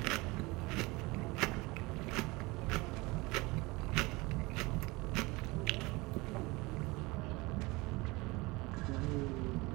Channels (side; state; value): left; quieter; 23.5 dB